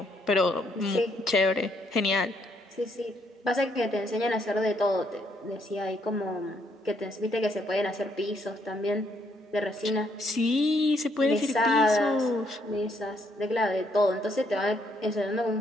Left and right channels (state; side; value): normal; both; correlation 0.72